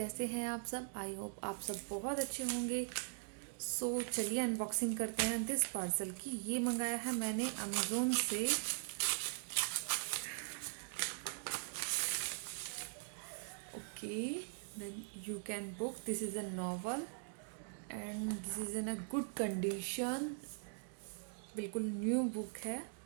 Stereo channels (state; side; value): silent; left; digital silence